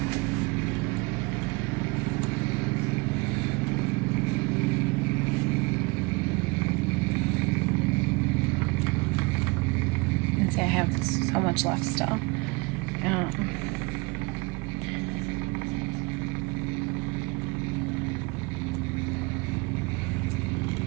And see, I have have so much left still.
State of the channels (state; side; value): quieter; left; 26.2 dB